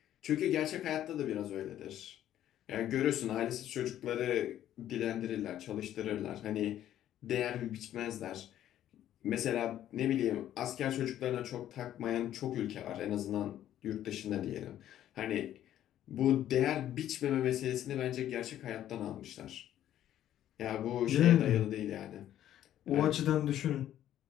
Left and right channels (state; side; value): quieter; right; 11.8 dB